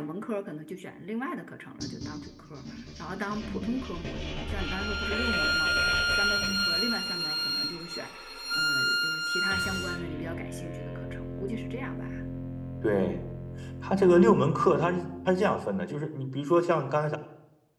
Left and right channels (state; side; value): identical; both; correlation 1.00